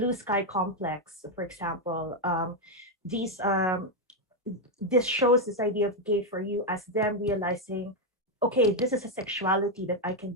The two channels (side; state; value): both; normal; correlation 0.03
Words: Sky Complex, for example. This shows this idea of gay for you as them realizing, okay, this is a sexuality that I can